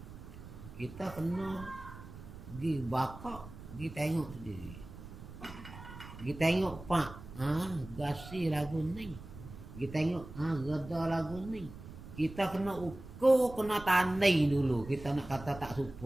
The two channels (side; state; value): right; noise; rumble, 14 dB below the sound